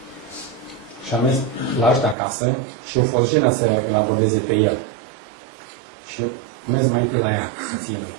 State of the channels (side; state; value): left; drops out; at 2.1 s